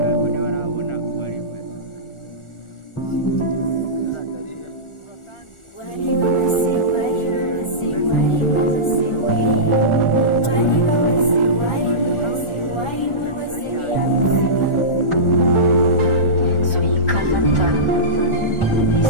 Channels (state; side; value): late; right; 1.4 ms